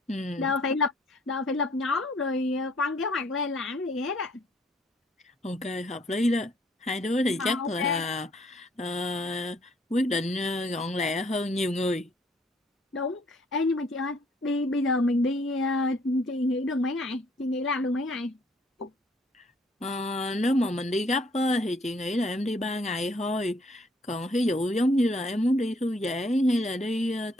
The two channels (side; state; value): both; normal; correlation 0.64